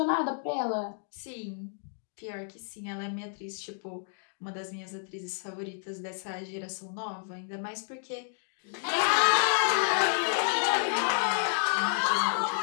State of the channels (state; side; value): silent; right; 58 dB below the other